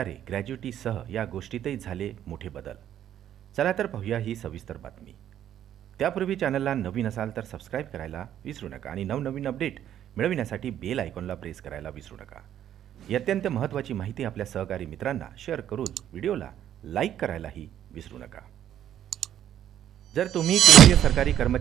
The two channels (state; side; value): quieter; left; 10.8 dB